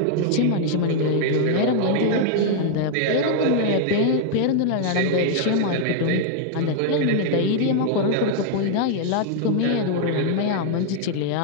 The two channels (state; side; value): different; both; correlation 0.00